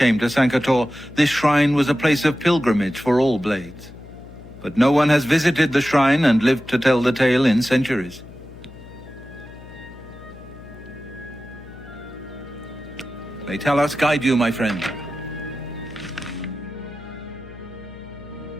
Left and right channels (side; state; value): left; noise; hum, 18 dB below the sound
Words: to Sancre Tor, this shrine was a place of pilgrimage for all Blades. But no one has visited the shrine and lived to tell the tale in centuries. May Talos guide you, my friend.